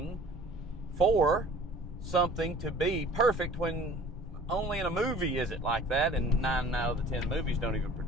for something to be perfect, when only in a movie is it like that, and 9 out of the 10 movies don't even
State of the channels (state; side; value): normal; both; correlation 0.48